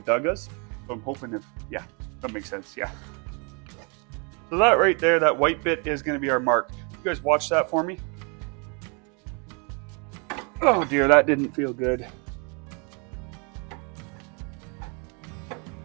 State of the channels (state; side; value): quieter; left; 34.5 dB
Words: So I'm hoping yeah, that makes sense, yeah. So that right there, that white bit is gonna be our mark. You guys watch that for me. Oh dear, that didn't feel good.